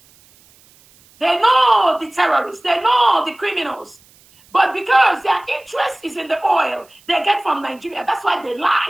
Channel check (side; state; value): right; noise; hiss, 29 dB below the sound